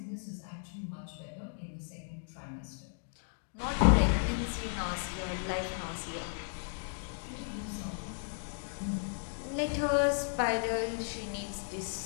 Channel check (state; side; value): silent; right; digital silence